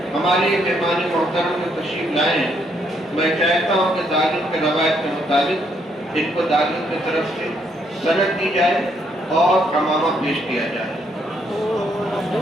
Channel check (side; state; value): both; normal; correlation 0.72